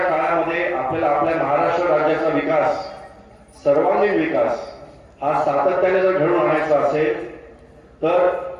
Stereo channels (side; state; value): both; identical; correlation 1.00